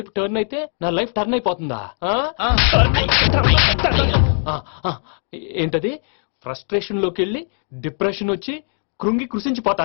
టర్న్ అయితే నా లైఫ్ టర్న్ అయిపోతుందా? ఏంటది? ఫ్రస్ట్రేషన్ లోకి వెళ్ళి డిప్రెషన్ వచ్చి కృంగి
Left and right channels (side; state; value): right; silent; 56 dB below the other